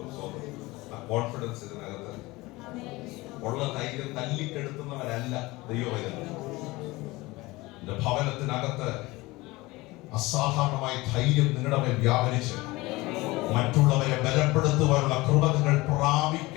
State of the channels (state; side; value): quieter; right; 21.2 dB